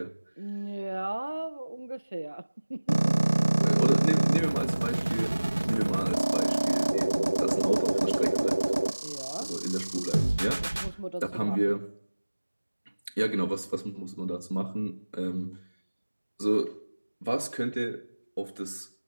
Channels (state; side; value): inverted; both; correlation -1.00